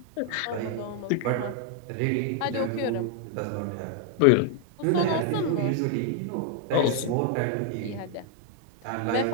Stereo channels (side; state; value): both; different; correlation 0.00